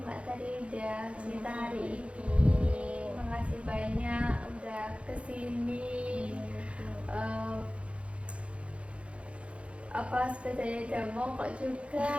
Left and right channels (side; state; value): left; late; 0.061 ms